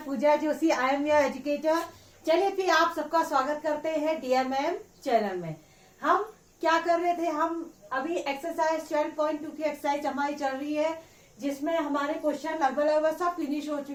Pooja Joshi, I am your educator. चलिए फिर आप सबका स्वागत करते हैं DMM चैनल में। हम क्या कर रहे थे, हम अभी एक्सरसाइज 12.2 की एक्सरसाइज हमारी चल रही है, जिसमें हमारे क्वेश्चन लगभग सब फिनिश हो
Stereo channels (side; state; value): both; identical; correlation 1.00